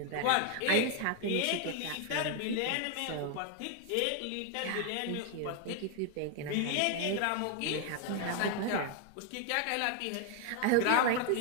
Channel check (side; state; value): both; different; correlation 0.01